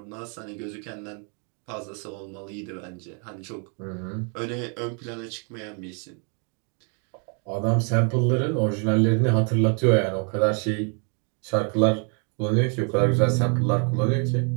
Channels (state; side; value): quieter; left; 39.5 dB